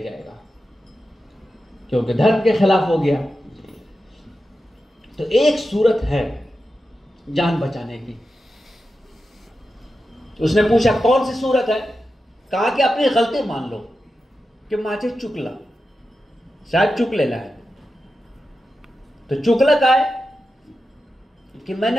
क्योंकि धर्म के खिलाफ हो गया। तो एक सूरत है जान बचाने की। उसने पूछा कौन सी सूरत है? कहा कि अपनी गलती मान लो कि माचे चुकला, शायद चुक लेना है। तो चुकला का है कि मैंने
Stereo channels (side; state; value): both; normal; correlation 0.91